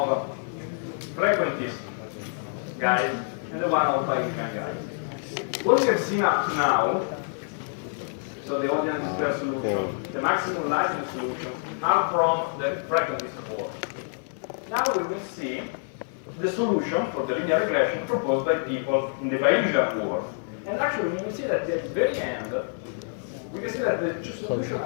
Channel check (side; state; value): right; silent; digital silence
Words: frequentist guys and the one of Bayesian guys. What we have seen up to now, so the audience square solution, the maximum likelihood solution, are from the frequentist world. Now we will see the solution for the linear regression proposed by people in the Bayesian world. And actually we will see that at the very end, we can see that the two solutions